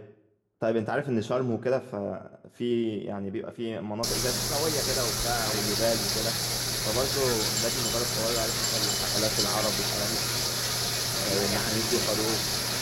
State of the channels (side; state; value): both; identical; correlation 1.00